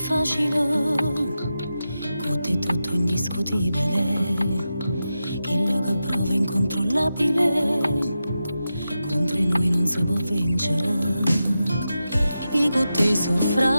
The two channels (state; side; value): inverted; both; correlation -0.90